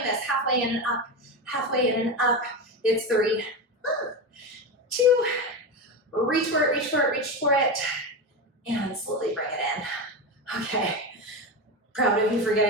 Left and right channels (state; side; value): normal; both; correlation 0.18